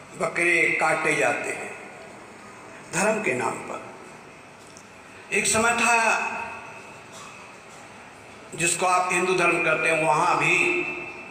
बकरे काटे जाते हैं धर्म के नाम पर। एक समय था जिसको आप हिंदू धर्म कहते हैं, वहाँ भी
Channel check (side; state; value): both; identical; correlation 1.00